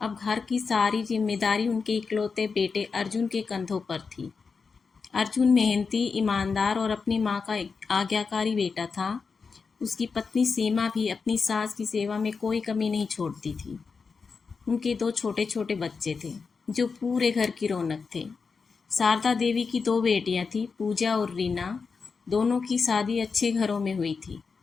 अब घर की सारी जिम्मेदारी उनके इकलौते बेटे अर्जुन के कंधों पर थी। अर्जुन मेहनती, ईमानदार और अपनी माँ का आज्ञाकारी बेटा था। उसकी पत्नी सीमा भी अपनी सास की सेवा में कोई कमी नहीं छोड़ती थी। उनके दो छोटे छोटे बच्चे थे जो पूरे घर की रौनक थे। शारदा देवी की दो बेटियां थीं, पूजा और रीना। दोनों की शादी अच्छे घरों में हुई थी।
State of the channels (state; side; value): quieter; right; 5.1 dB